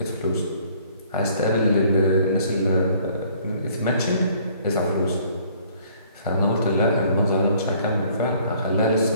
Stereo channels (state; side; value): inverted; both; correlation -0.59